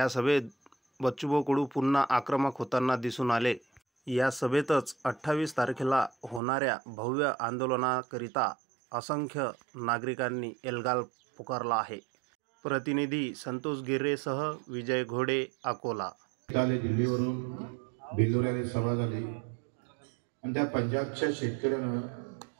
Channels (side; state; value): left; drops out; at 6.4 s